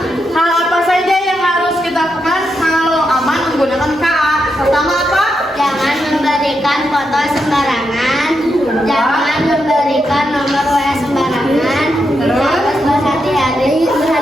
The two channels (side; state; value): both; normal; correlation 0.84